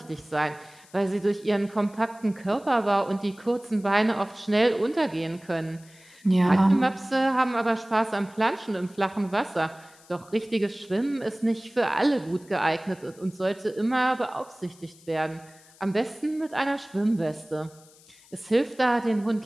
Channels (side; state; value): left; noise; hiss, 26 dB below the sound